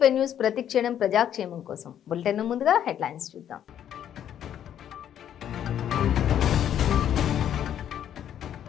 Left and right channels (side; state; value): right; quieter; 10.1 dB